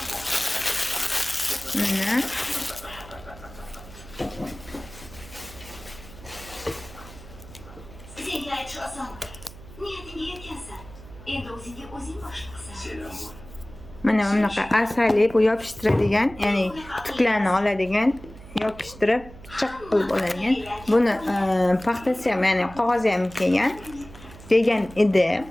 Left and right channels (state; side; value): noise; right; hum, 18 dB below the sound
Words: Mana. Senga aytish oson. Niyatingga yetgansan. Endi o'zingga o'zing boshliqsan. Selam bu. Mana bunaqa asali bu yopishtiradigan, ya'ni tuklarni oladigan, yopishtirib chiq qilib oladigan. Buni paxtasi ham, ya'ni qog'ozi ham kelgan. Degan edi.